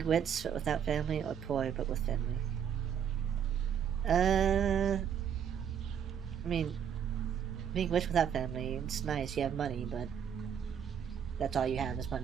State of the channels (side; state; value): left; quieter; 8.3 dB